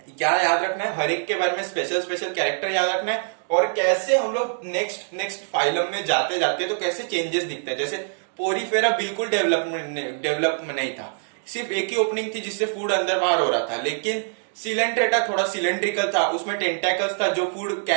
क्या याद रखना है? हर एक के बारे में स्पेशल स्पेशल कैरेक्टर याद रखना है, और कैसे हम लोग नेक्स्ट फाइलम में जाते जाते तो कैसे चेंजेस दिखते हैं। जैसे पोरीफेरा बिल्कुल डेवलप नहीं था, सिर्फ एक ही ओपनिंग थी जिससे फूड अंदर बाहर हो रहा था, लेकिन सिलेंट्रेटा थोड़ा सिलेंड्रिकल था, उसमें टेंटेकल्स था जो फूड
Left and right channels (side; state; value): left; silent; digital silence